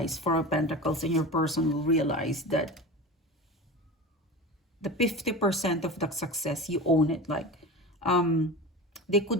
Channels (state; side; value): normal; both; correlation 0.30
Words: Four of Pentacles, and your person will realize that the 50% of the success, you own it. Like they could